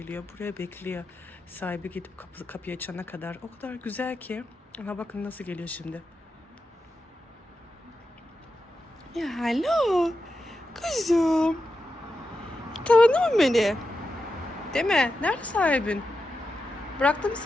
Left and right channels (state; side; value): normal; both; correlation 0.89